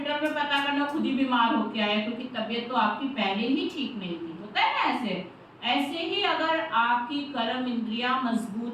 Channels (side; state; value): both; identical; correlation 1.00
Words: में पता करना, खुद ही बीमार होके आया, क्योंकि तबीयत तो आपकी पहले ही ठीक नहीं थी। होता है ना ऐसे ही अगर आपकी कर्म इंद्रिया